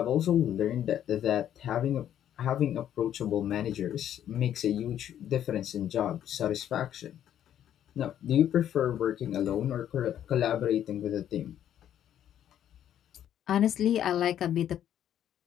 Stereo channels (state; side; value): quieter; right; 10.6 dB